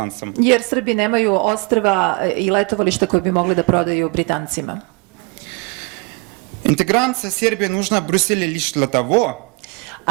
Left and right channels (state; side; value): quieter; left; 29.8 dB